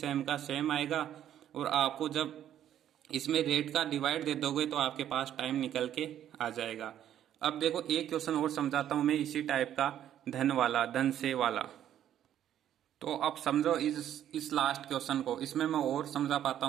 का सेम आएगा। और आपको जब इसमें रेट का डिवाइड दे दोगे तो आपके पास टाइम निकल के आ जाएगा। अब देखो एक क्वेश्चन और समझाता हूं मैं इसी टाइप का, धन वाला, धन से वाला। तो अब समझो इस लास्ट क्वेश्चन को, इसमें मैं और समझा पाता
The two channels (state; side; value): quieter; left; 10.8 dB